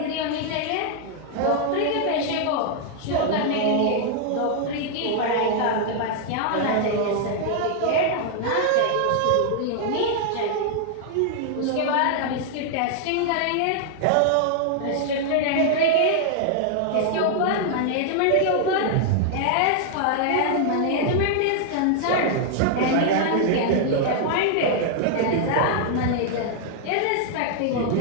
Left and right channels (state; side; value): different; both; correlation 0.00